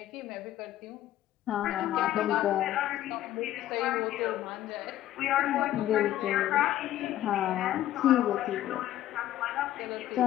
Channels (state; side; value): quieter; right; 13.3 dB